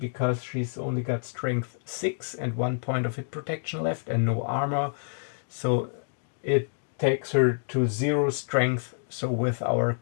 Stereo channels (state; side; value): silent; right; digital silence